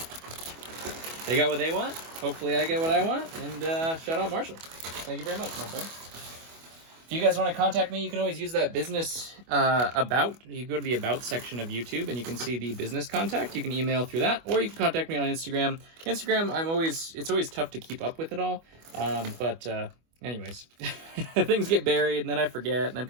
They got what they want. Hopefully I get what I want. And shout out Marshall. Thank you very much, my friend. If you guys want to contact me, you can always use that business about. You go to the about section of YouTube and you can see the business contact. You can email through that, or you can contact me on Instagram. Instagram, it's always tough to keep up with it all. Anyways, things get buried and then I forget and then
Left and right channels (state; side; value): late; left; 25 ms